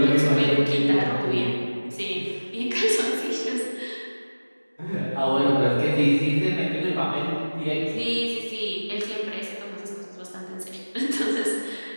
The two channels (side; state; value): both; inverted; correlation -1.00